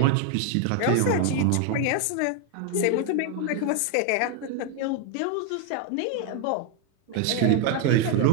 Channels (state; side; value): different; both; correlation 0.01